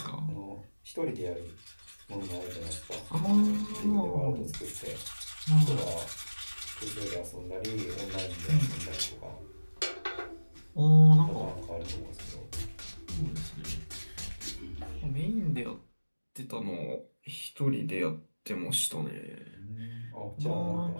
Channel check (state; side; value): inverted; both; correlation -1.00